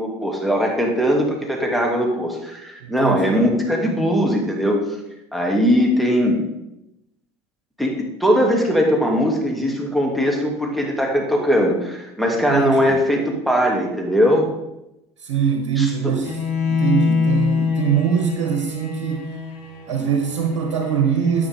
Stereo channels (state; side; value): normal; both; correlation 0.58